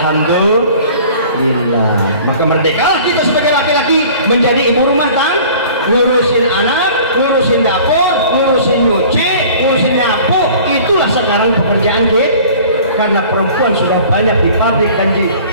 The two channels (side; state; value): both; inverted; correlation -0.47